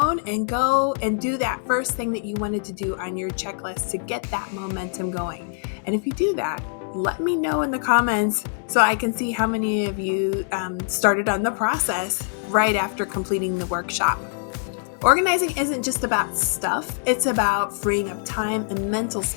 and go and do that first thing that you wanted to do on your checklist to get that momentum going. And if you do that, let me know in the comments so I can see how many of you started on the process right after completing the workshop. Organizing isn't just about stuff, it's about freeing up time and mental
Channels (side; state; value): right; silent; 63 dB below the other